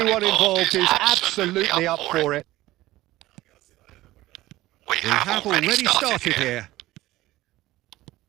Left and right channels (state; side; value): quieter; left; 16.9 dB